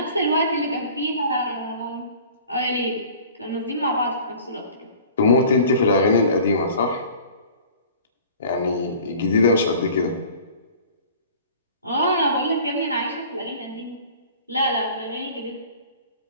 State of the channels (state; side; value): inverted; both; correlation -0.46